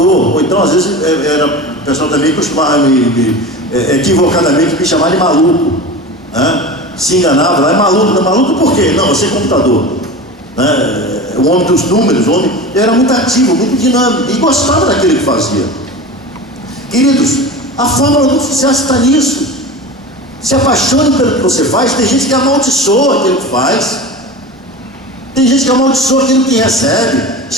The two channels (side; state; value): both; normal; correlation 0.31